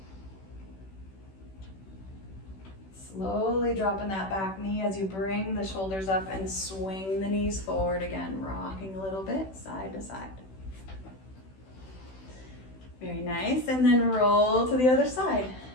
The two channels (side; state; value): right; late; 16 ms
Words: Slowly dropping that back knee as you bring the shoulders up and swing the knees forward again, rocking a little bit side to side. Very nice, and then roll to the other side.